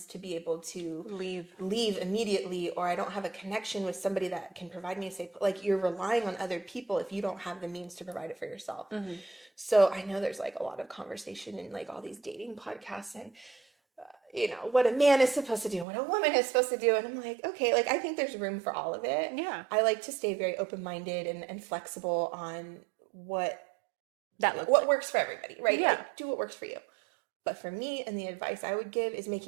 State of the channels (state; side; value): drops out; left; at 15.9 s